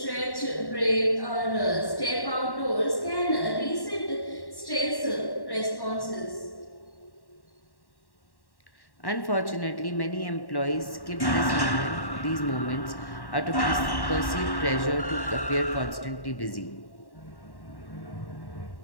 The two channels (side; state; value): right; late; 1.1 ms